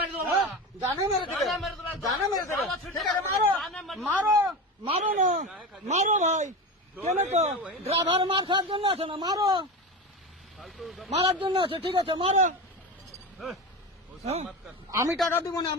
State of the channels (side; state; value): both; normal; correlation 0.24